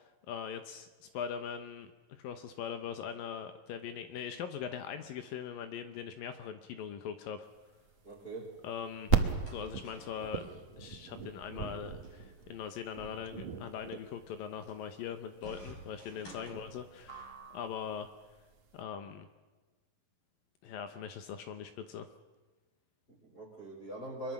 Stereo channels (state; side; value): late; right; 11 ms